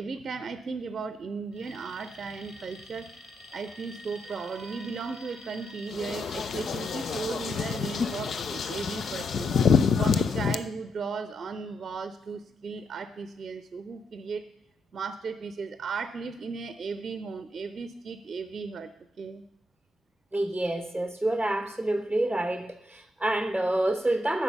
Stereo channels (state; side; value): normal; both; correlation 0.79